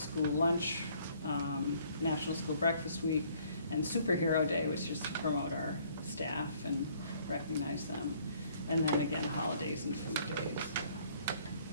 Lunch, National School Breakfast Week, and Superhero Day, which is to promote our staff and recognize them. And then again, holidays and food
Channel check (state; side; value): inverted; both; correlation -0.61